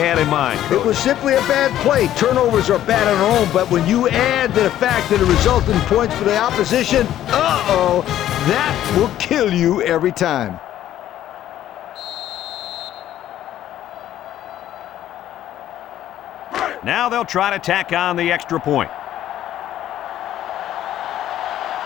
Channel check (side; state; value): right; quieter; 12.3 dB